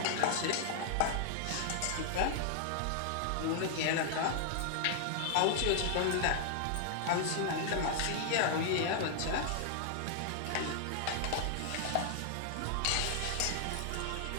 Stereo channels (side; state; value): both; different; correlation 0.00